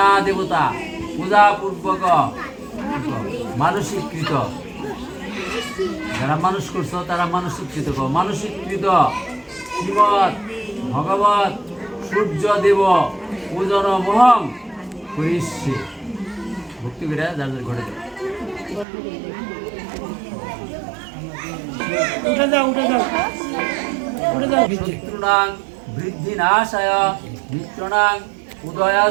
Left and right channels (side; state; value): left; drops out; at 18.9 s